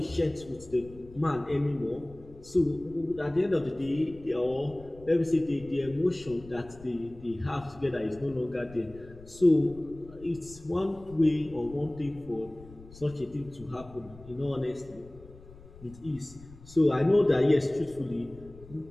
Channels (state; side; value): noise; left; rumble, 20 dB below the sound